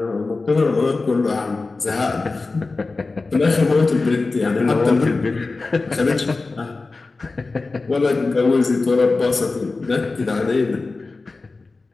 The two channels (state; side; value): quieter; right; 3.7 dB